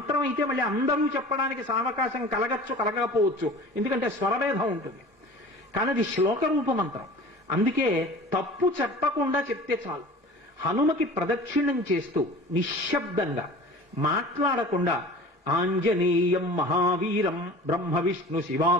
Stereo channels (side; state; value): both; normal; correlation 0.40